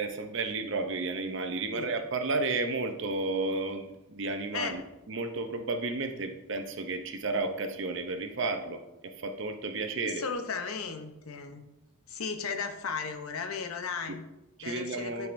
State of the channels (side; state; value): both; normal; correlation -0.11